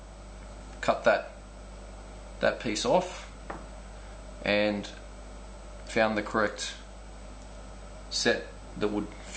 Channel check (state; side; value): identical; both; correlation 1.00